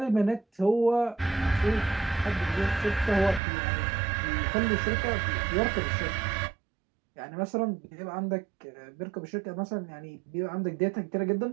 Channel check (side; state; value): left; drops out; at 3.4 s